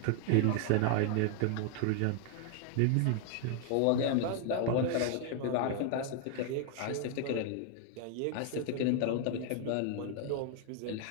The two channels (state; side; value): different; both; correlation 0.00